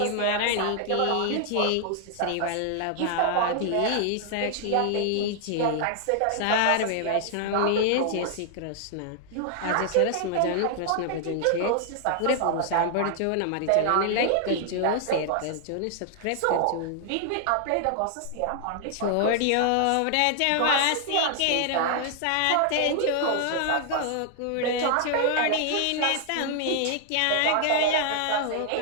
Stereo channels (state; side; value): different; both; correlation 0.00